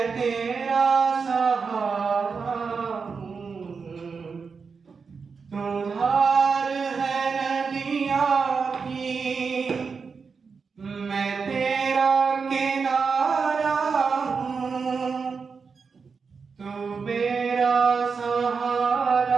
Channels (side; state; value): left; quieter; 5.3 dB